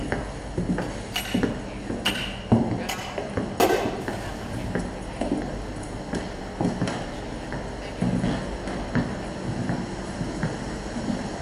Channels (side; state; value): both; identical; correlation 1.00